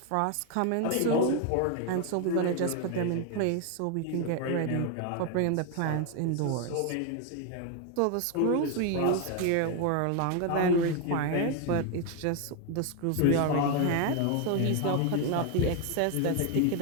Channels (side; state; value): both; different; correlation 0.01